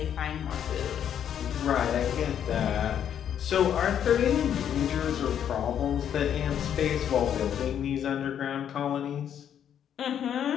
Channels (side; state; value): right; quieter; 9.3 dB